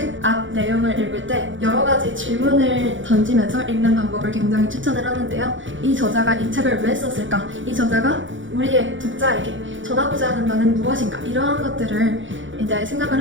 앞 내용을 읽을 때 여러 가지 질문을 던지면서 읽는 방법을 굉장히 추천을 하는데요. 이 저자가 이 책을 왜 썼을까? 이 저자가 우리의 독자에게 전하고자 하는 바는 무엇인가? 이러한 것들을 이제 생각을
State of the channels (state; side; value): late; left; 0.56 ms